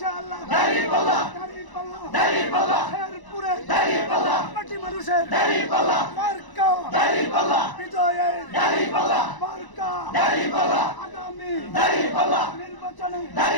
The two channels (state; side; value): late; right; 1.0 ms